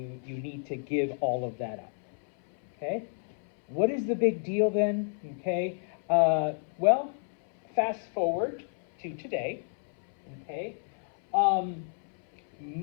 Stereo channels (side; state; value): right; silent; 58 dB below the other